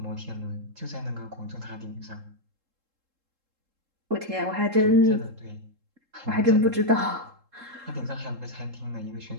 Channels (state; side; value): late; left; 3.7 ms